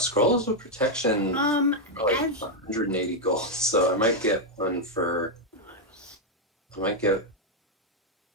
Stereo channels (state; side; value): normal; both; correlation 0.00